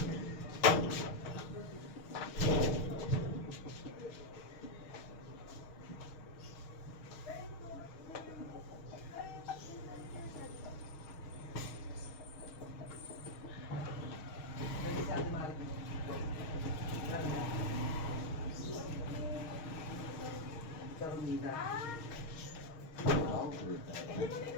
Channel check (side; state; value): right; late; 6.4 ms